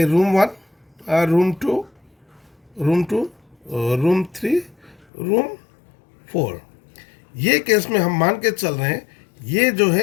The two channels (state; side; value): drops out; right; at 5.1 s